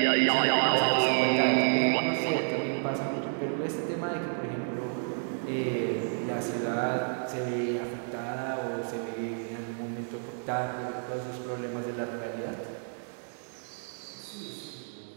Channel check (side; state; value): left; silent; digital silence